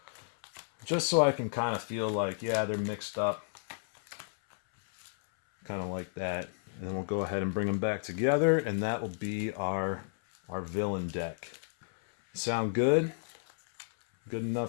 just so I can kind of feel like, yeah, they're mixed up. Kind of like that. And then we'll go ahead and bring them back together, and that will be our villain deck. Sound good? Good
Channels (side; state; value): right; silent; 56 dB below the other